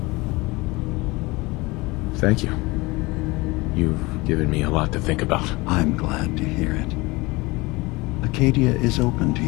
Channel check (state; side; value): quieter; right; 23.1 dB